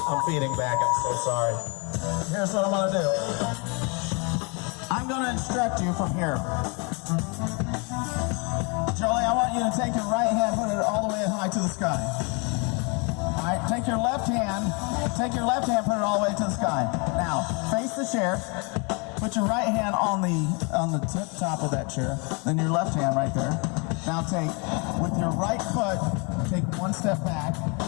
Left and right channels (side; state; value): right; quieter; 32.6 dB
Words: I'm feeding back. I'm so sorry. Here's what I'm gonna do. I'm gonna instruct you from here. Jolie, I want you to take your right hand, put it all the way high to the sky. All right, take your left hand, put it all the way to the sky. Now, face the chair. Put your right hand on the tip top of that chair, then your left hand right there. Now with your right foot, take one step back,